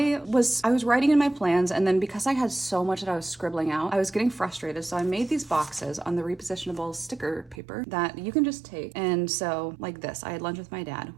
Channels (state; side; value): drops out; left; at 7.6 s